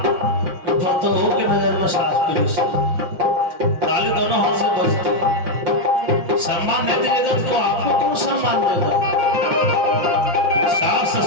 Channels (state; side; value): late; left; 5.7 ms